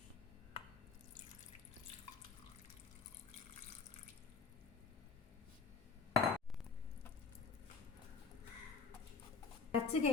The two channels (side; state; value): right; quieter; 5.2 dB